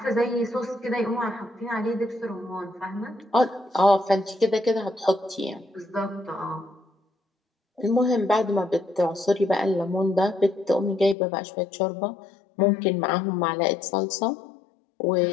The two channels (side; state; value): right; drops out; at 11.2 s